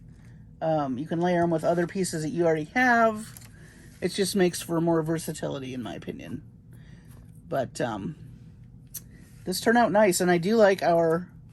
you can layer them with other pieces that you already have. It just makes for more versatility, in my opinion. But this turned out nice, and I do like our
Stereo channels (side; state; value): both; identical; correlation 1.00